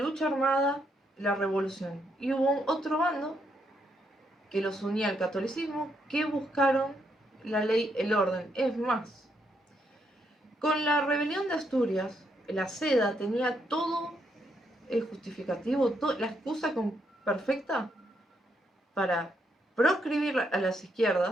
armada, la revolución. Y hubo otro bando que los unía al catolicismo, que buscaron la ley, el orden. Es más, con la rebelión de Asturias, la seda tenía todo el justificativo, la excusa perfecta para proscribir a las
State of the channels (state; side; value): normal; both; correlation 0.77